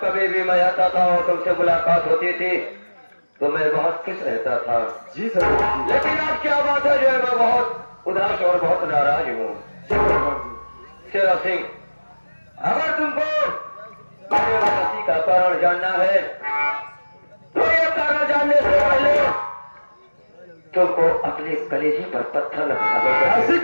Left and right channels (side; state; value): both; inverted; correlation -1.00